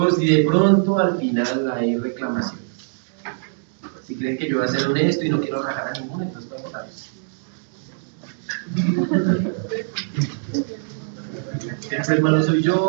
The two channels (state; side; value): silent; left; digital silence